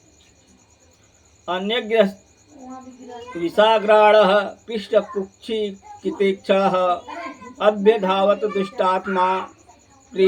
अन्यग्रस्त विषाग्राणः पृष्ठकुक्षिकितेक्षणः अभ्यधावत दुष्टात्मा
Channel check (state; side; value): identical; both; correlation 1.00